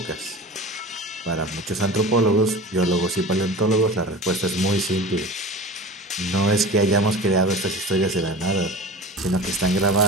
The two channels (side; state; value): both; normal; correlation 0.35